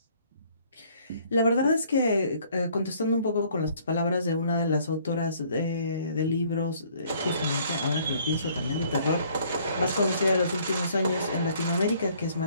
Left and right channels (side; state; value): both; inverted; correlation -0.60